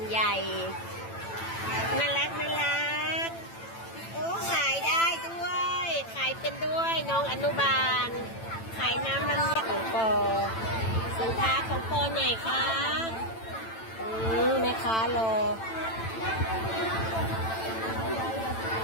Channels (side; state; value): right; late; 9.0 ms